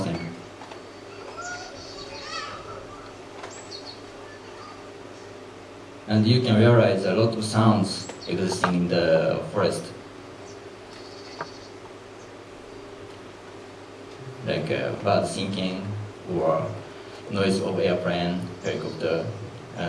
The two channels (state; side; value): identical; both; correlation 1.00